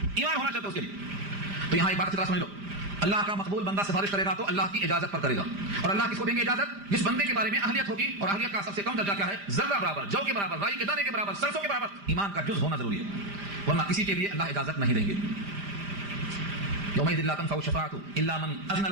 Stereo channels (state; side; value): late; left; 5.0 ms